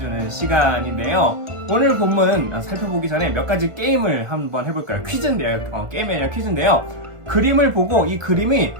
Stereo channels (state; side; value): late; left; 1.4 ms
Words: 시간인데요. 오늘 본문 살펴보기 전에 몇 가지 게임을 한번 해볼까요? 퀴즈인데요. 게임이 아니라 퀴즈인데요. 그림을 보고 이 그림이